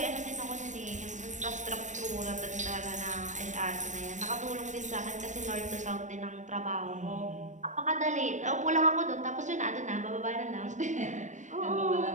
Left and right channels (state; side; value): late; left; 0.35 ms